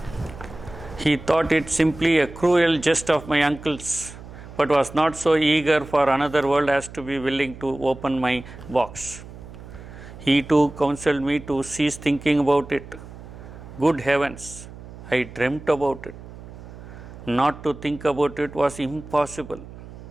He thought it simply a cruel jest of my uncle's, but was not so eager for another world as to be willing to open my box. He too counseled me to cease thinking about it. Good heavens, I dreamt about it. Not to think about it was impossible.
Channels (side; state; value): right; noise; hum, 15 dB below the sound